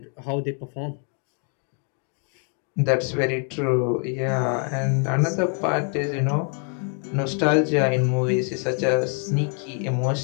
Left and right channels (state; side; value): quieter; right; 39.7 dB